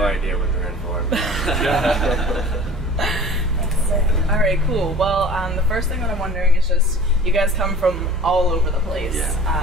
idea what they're in for. All right, cool. Well, the first thing that I'm wondering is just, you guys come from all over the place.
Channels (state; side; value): normal; both; correlation 0.43